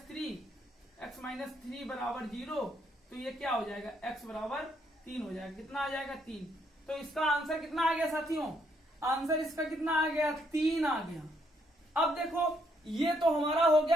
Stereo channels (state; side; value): normal; both; correlation 0.72